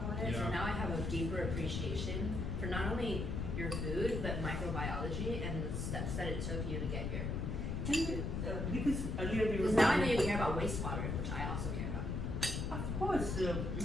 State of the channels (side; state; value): left; noise; rumble, 1 dB below the sound